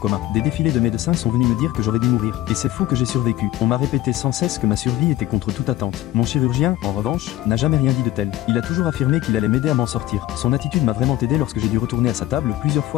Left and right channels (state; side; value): quieter; right; 14.4 dB